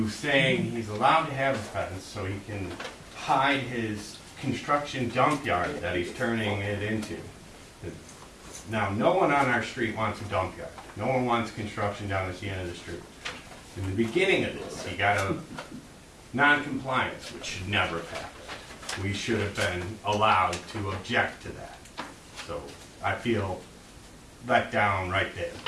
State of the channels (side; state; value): both; identical; correlation 1.00